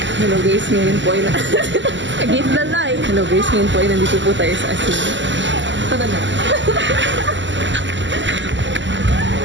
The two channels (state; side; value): late; left; 0.54 ms